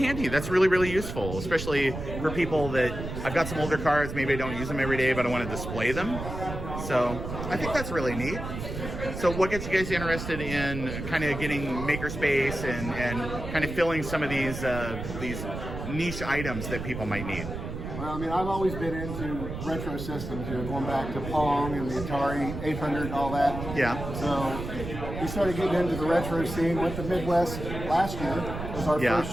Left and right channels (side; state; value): right; noise; rumble, 7 dB below the sound